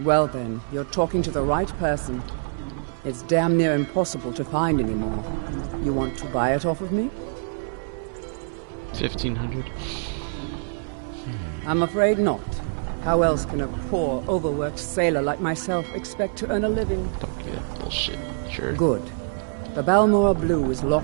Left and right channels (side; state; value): left; silent; 62 dB below the other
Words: then, you're talking to the right person. It's damn near impossible to find anymore. You want to buy it off of me? 1,500. I'm afraid not. How else can a poor, overworked sailor like myself expect to earn a living? Don't give that bullshit. Sure. Good. The Balmora Blue is